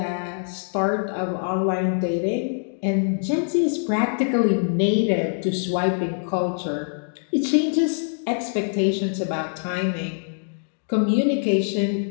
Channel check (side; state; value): right; silent; digital silence